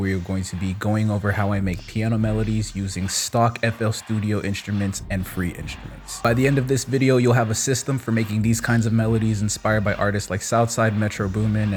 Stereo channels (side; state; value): both; identical; correlation 1.00